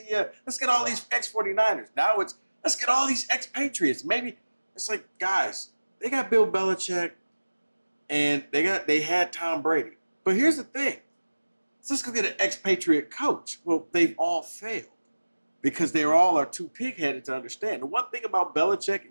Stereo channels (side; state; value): both; inverted; correlation -1.00